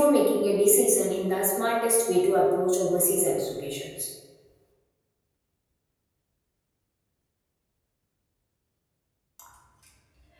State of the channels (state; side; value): identical; both; correlation 1.00